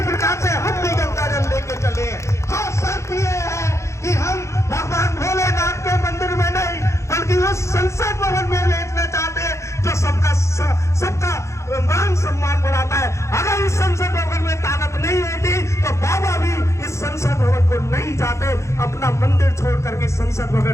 प्रकार से हम भी गंगा जल लेके चले हैं। हाँ, शर्त ये है कि हम भगवान भोलेनाथ के मंदिर में नहीं बल्कि उस संसद भवन में लेटना चाहते हैं जो सबका मान सम्मान बढ़ाता है। अगर इस संसद भवन में ताकत नहीं होती तो बाबा भी इस संसद भवन को नहीं जाते, अपना मंदिर छोड़ करके संसद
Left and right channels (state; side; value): late; right; 0.14 ms